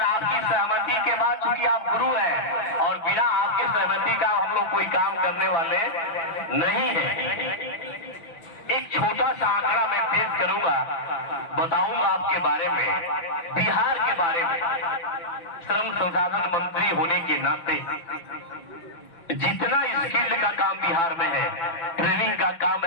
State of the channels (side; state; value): right; late; 6.0 ms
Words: आपकी सहमति के बाद, चूंकि आप गुरु हैं और बिना आपके सहमति का हम लोग कोई काम करने वाले नहीं है। एक छोटा सा आंकड़ा मैं पेश करूंगा, बताऊंगा आपके बारे में, बिहार के बारे में। श्रम संसाधन मंत्री होने के नाते जितना स्किल का काम बिहार में है, ट्रेनिंग का काम